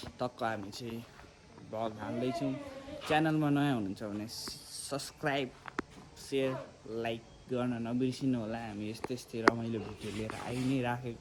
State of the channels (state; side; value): identical; both; correlation 1.00